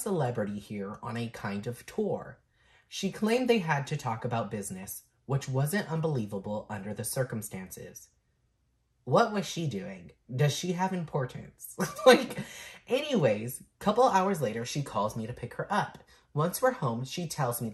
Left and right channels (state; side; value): identical; both; correlation 1.00